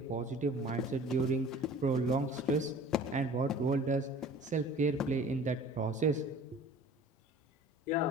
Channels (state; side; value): normal; both; correlation 0.45